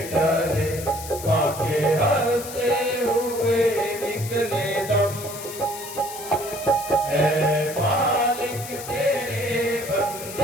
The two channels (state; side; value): noise; left; hiss, 11 dB below the sound